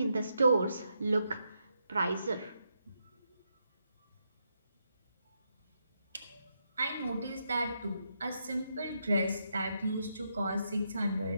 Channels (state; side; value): inverted; both; correlation -0.81